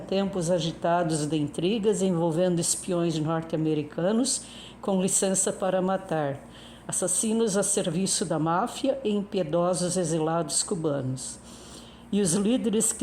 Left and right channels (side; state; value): both; identical; correlation 1.00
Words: agitados de intrigas envolvendo espiões norte-americanos com licença para matar, assassinos a serviço da máfia e impiedosos exilados cubanos. E os líderes